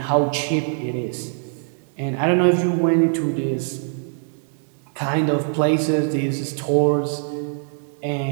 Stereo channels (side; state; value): left; silent; 64 dB below the other